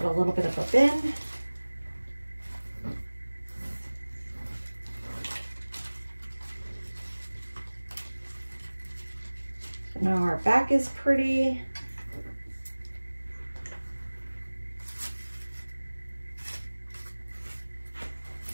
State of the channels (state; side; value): inverted; both; correlation -1.00